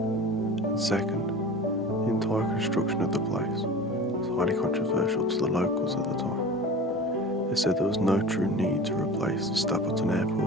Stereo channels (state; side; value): normal; both; correlation 0.36